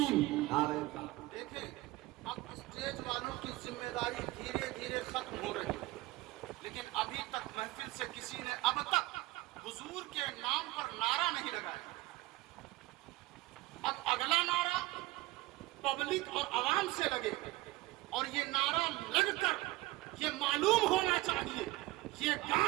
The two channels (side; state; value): left; quieter; 19.2 dB